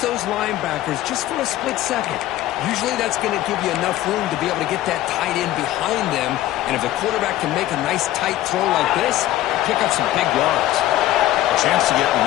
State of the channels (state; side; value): quieter; right; 14.6 dB